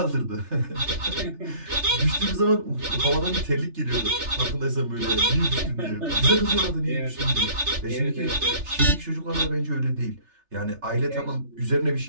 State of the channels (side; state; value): left; late; 3.3 ms